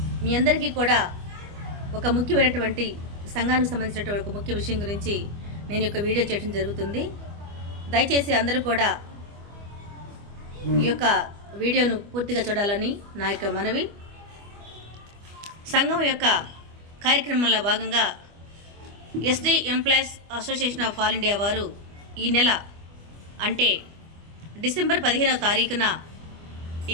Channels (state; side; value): late; left; 25 ms